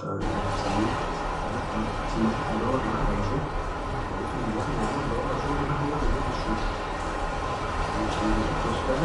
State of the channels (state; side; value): identical; both; correlation 1.00